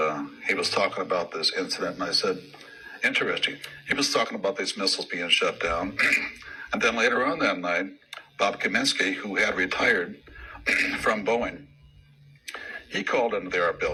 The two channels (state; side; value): identical; both; correlation 1.00